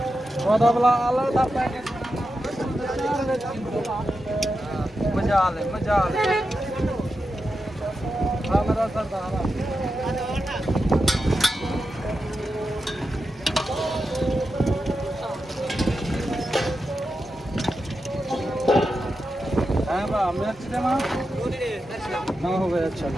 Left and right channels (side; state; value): both; normal; correlation 0.89